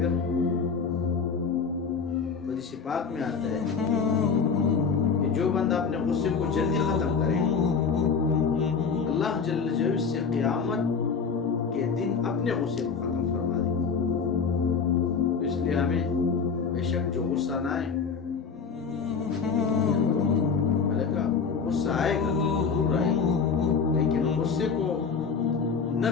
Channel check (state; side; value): quieter; right; 5.6 dB